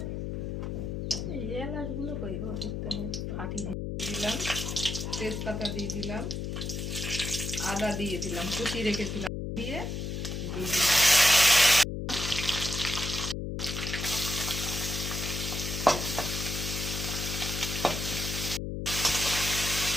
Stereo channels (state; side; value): noise; left; hum, 4 dB below the sound